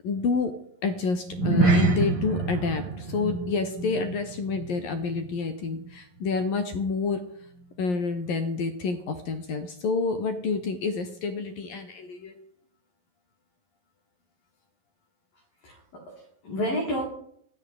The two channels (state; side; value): late; right; 11 ms